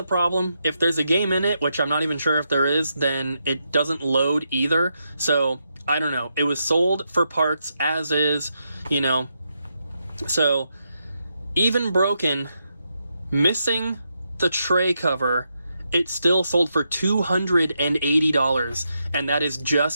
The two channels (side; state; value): both; inverted; correlation -0.83